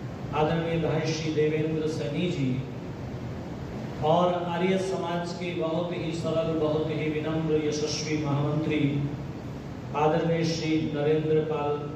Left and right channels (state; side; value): identical; both; correlation 1.00